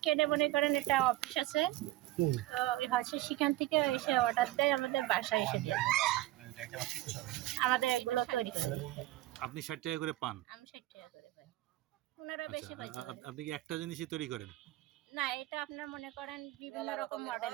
কেটে মনে করেন এটা অফিস আছে, তো হচ্ছে সেখান থেকে এসে অর্ডার দেয়, আমাদের বাসায় এসে দিয়ে দেয়। আমাদের এগুলো তৈরি করে দিতে হয়। আপনি 60 টাকা করে পান? আমি 60 টাকা করে পাই। ওনারা বেশি আচ্ছা, পাইছে। আপনি কি একটা জিনিসই তৈরি করেন? না, এটা আপনার মনে করেন বিভিন্ন রকম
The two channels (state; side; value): quieter; left; 16.1 dB